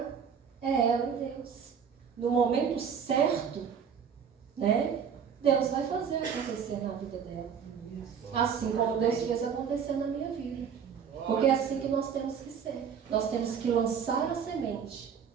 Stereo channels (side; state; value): left; quieter; 7.3 dB